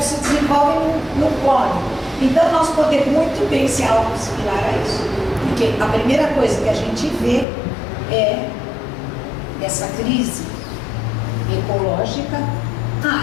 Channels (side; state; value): right; drops out; at 7.5 s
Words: se desenvolve, não come. Então nós podemos muito bem ser algo similar a isso. Porque a primeira coisa que a gente vê é essa crise ecológica.